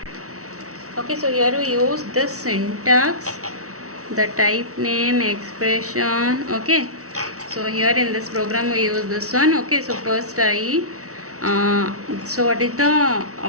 Okay, so here we use this syntax, the type name, expression. Okay, so here in this program we use this one. Okay, so first so what is the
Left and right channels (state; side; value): late; left; 0.65 ms